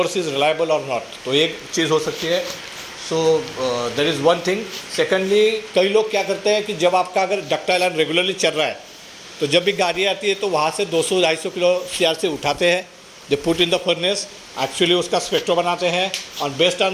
is reliable और नॉट, तो एक चीज़ हो सकती है। सो that is one thing. Secondly, कई लोग क्या करते हैं कि जब आपका अगर डक्टाइल आयरन रेगुलरली चल रहा है, तो जब भी गाड़ी आती है तो वहाँ से 200-250 किलो सीआरसी उठाते हैं, they put in the furnace, actually उसका स्पेक्ट्रो बनाते हैं, और based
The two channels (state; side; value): identical; both; correlation 1.00